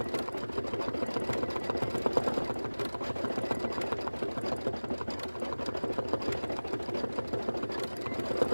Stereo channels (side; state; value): both; inverted; correlation -1.00